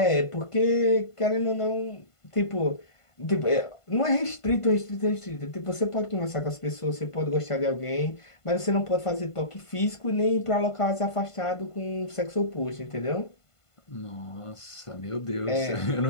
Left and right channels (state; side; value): late; right; 1.5 ms